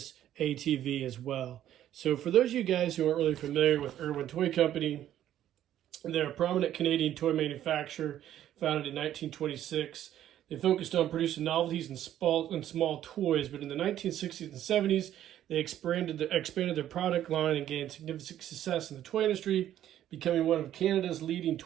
ATV as well. So for those of you guys who aren't really familiar with Irwin Toy Company, they're a prominent Canadian toy manufacturer founded in 1926. They focused on producing novelties and small toys, but in the 1960s and 70s, they expanded their product line and gained significant success in the toy industry, becoming one of Canada's leading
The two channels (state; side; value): quieter; left; 11.7 dB